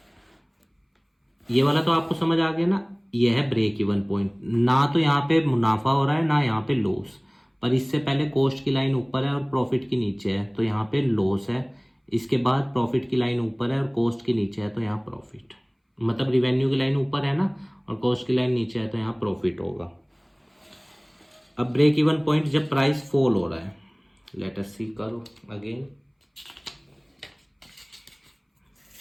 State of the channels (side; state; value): both; identical; correlation 1.00